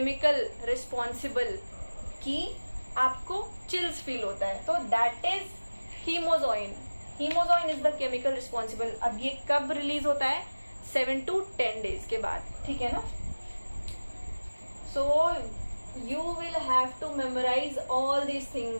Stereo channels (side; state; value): both; inverted; correlation -1.00